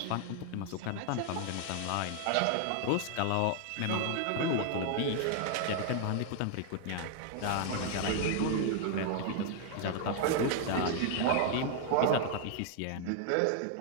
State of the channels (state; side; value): different; both; correlation 0.00